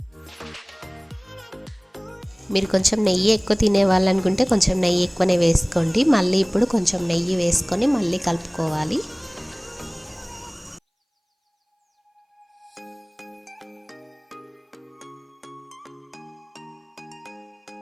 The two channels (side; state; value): both; identical; correlation 1.00